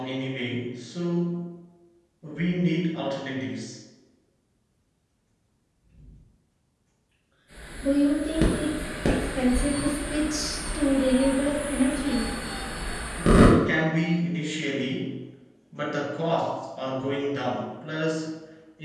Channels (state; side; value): identical; both; correlation 1.00